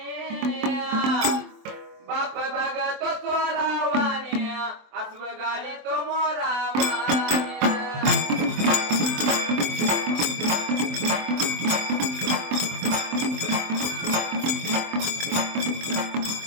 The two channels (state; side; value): late; left; 23 ms